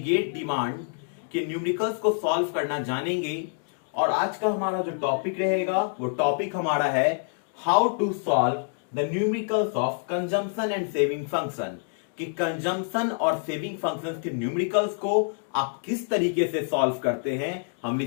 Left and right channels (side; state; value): right; silent; 60 dB below the other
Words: डिमांड के न्यूमेरिकल्स को सॉल्व करना जानेंगे। और आज का हमारा जो टॉपिक रहेगा वो टॉपिक हमारा है how to solve the numericals of consumption and saving function. कि कंजम्पशन और सेविंग फंक्शंस के न्यूमेरिकल्स को आप किस तरीके से सॉल्व करते हैं, हम